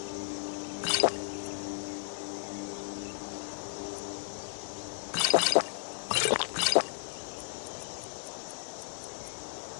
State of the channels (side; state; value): right; silent; digital silence